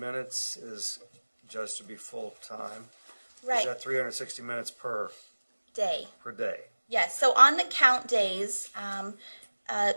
is judged to be full-time. Right. Is that 360 minutes per Day. day? Yes, so on the count days,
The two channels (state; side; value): inverted; both; correlation -1.00